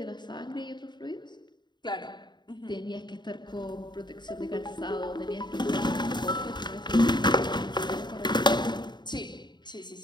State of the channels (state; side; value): late; right; 0.21 ms